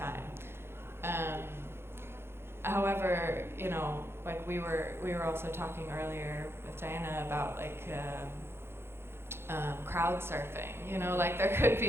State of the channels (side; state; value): left; late; 0.12 ms